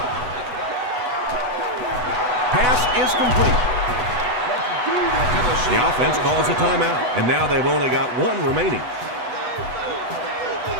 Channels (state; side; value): late; left; 8.1 ms